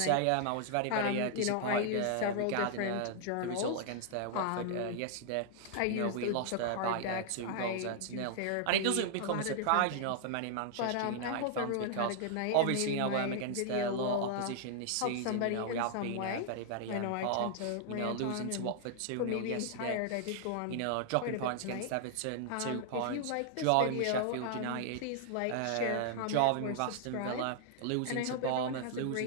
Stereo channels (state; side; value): different; both; correlation -0.01